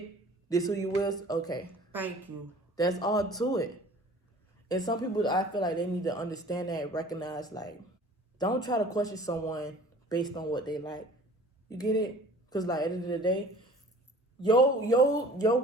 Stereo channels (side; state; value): both; normal; correlation 0.47